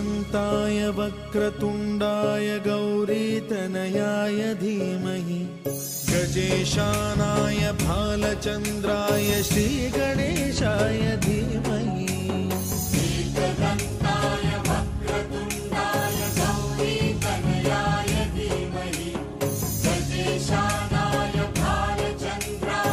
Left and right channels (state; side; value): identical; both; correlation 1.00